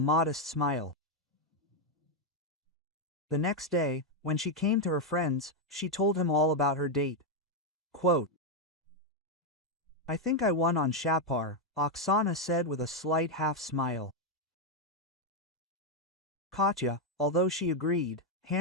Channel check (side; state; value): both; normal; correlation 0.02